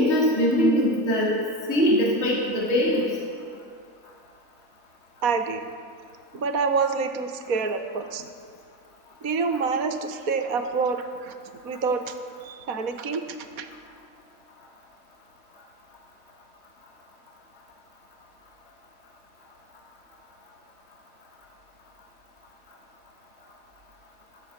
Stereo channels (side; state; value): left; late; 4.1 ms